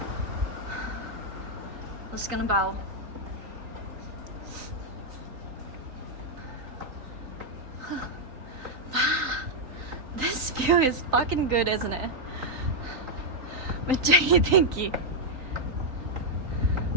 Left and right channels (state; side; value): late; left; 3.9 ms